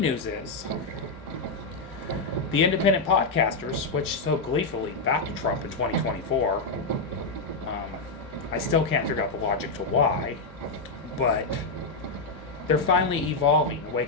news is, the independent podcasters, which so gleefully backed Trump in 2024, I still can't figure out the logic to why, but they're finally evolving,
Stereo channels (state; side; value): quieter; right; 3.6 dB